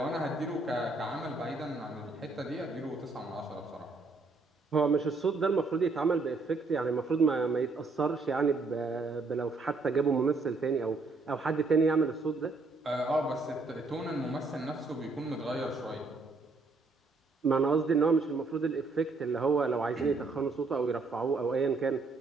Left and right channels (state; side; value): quieter; left; 3.7 dB